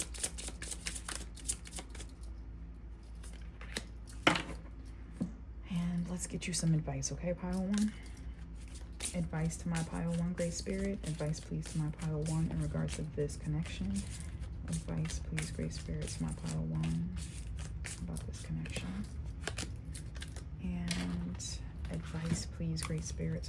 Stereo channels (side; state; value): both; identical; correlation 1.00